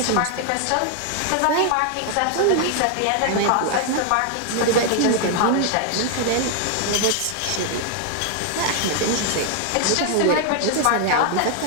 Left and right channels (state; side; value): different; both; correlation 0.00